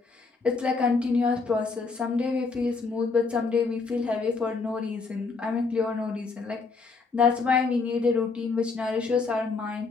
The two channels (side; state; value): right; quieter; 4.4 dB